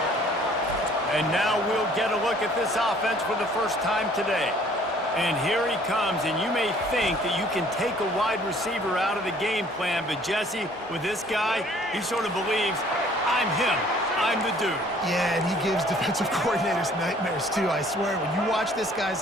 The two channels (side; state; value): both; normal; correlation 0.57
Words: And now we'll get a look at this offense for the first time today. And here he comes, and you may think that you can take a wide receiver out of the game plan, but Jesse, with this guy, he sort of believes, I'm him. I'm the dude. Yeah, and he gives defensive coordinators nightmares, too, I swear. When you watch this